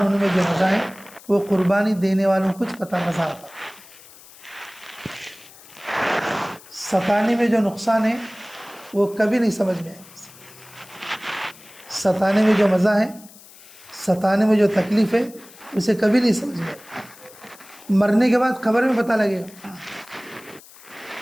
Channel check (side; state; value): left; noise; hiss, 22 dB below the sound